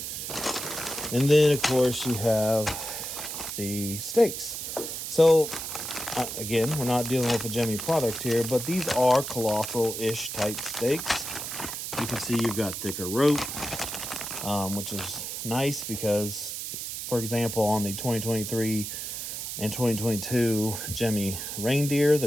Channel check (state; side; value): noise; right; hiss, 6 dB below the sound